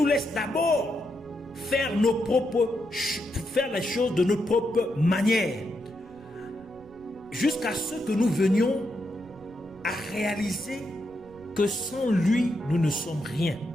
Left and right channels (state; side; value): noise; right; rumble, 25 dB below the sound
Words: laisse d'abord faire les choses de notre propre manière, jusqu'à ce que nous venions à réaliser que sans lui, nous ne sommes rien.